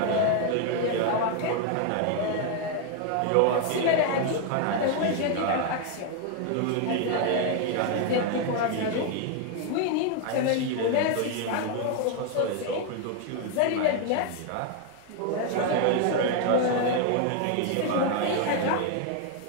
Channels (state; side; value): different; both; correlation 0.01